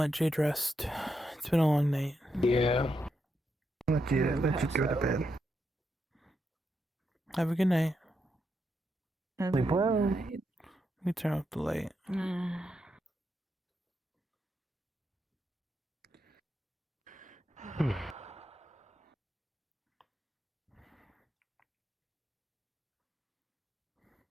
Jade rest. It's been a long night. Yeah. Let you go to bed. Have a good night. Sleep well. Let me turn off the light.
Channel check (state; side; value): normal; both; correlation 0.83